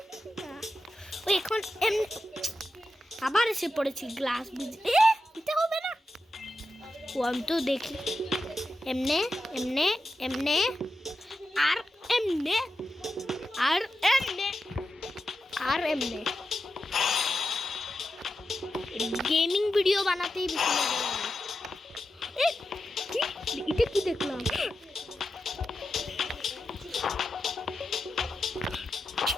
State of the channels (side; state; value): both; normal; correlation 0.90